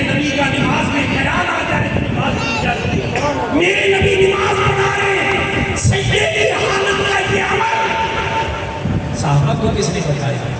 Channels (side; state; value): both; identical; correlation 1.00